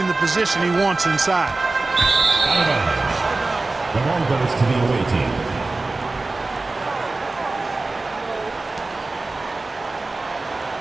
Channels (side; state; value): left; quieter; 3.3 dB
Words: the position he wants inside. The ball goes to the away team.